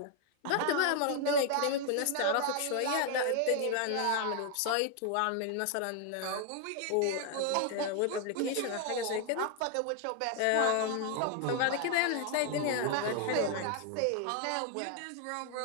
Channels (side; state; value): both; different; correlation 0.00